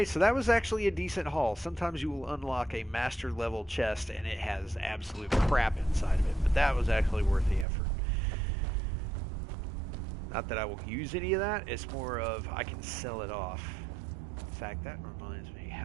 so that was actually a decent haul. Sometimes you will unlock a master level chest and it has absolute crap inside of it, but that was actually worth the effort. Not that I will use any of that, it's more of I can sell it off. In fact, that reminds me,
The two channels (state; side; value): drops out; left; at 7.7 s